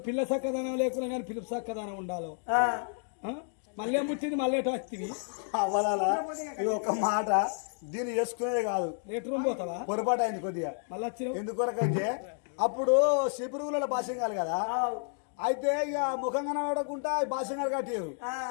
పిల్ల చక్కదనం లేకుండా కానీ పిలుపు చక్కదనం ఉండాలి. మళ్ళీ ముట్టింది మళ్ళీ వస్తుంది అవ్వాలా ఇది ఒక మాట దీన్ని వేసుకునేది కాదు లేటర్ పోతావా పొరపాటు అయింది కొద్దిగా మళ్ళీ వచ్చిన ఎందుకొరకంటే అప్పుడు శిపురువుల భాషంగాలు కదా అయితే ఇక ముఖం కనబడకుండా భాషంగా కట్టారు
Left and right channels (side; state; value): right; silent; 57 dB below the other